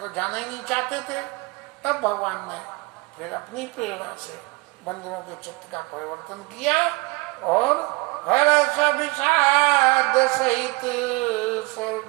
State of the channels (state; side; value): quieter; left; 26.1 dB